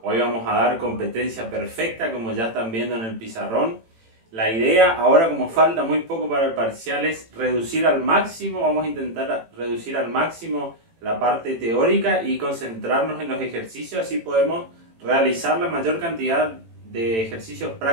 Hoy vamos a dar competencia perfecta, como ya están viendo en el pizarrón. La idea, ahora como falta muy poco para el parcial, es reducir al máximo, vamos a intentar reducir al máximo la parte teórica y concentrarnos en los ejercicios, así podemos realizar la mayor cantidad de ejercicios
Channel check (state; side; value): late; left; 18 ms